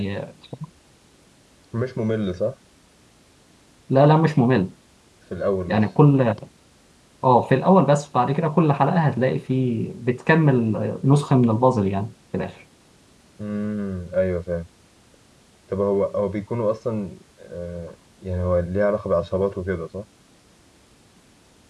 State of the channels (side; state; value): both; identical; correlation 1.00